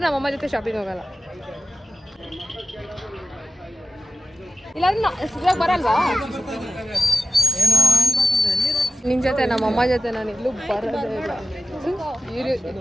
ನಮ್ಮಮ್ಮ ಜೊತೆ ಶಾಪಿಂಗ್ ಹೋಗಲ್ಲ. ಇಲ್ಲಾಂದ್ರೆ ಬರಲ್ವಾ ನಿನ್ ಜೊತೆ? ನಮ್ಮಮ್ಮ ಜೊತೆ ನಾನು ಎಲ್ಲೂ ಬರೋದೇ ಇಲ್ಲ.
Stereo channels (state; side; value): normal; both; correlation 0.93